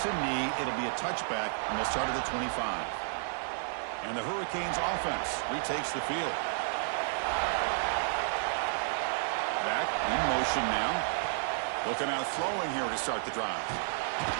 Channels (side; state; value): left; silent; digital silence